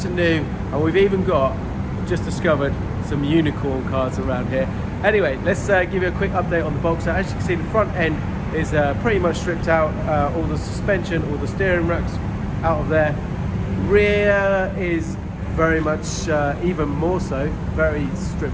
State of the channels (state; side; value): identical; both; correlation 1.00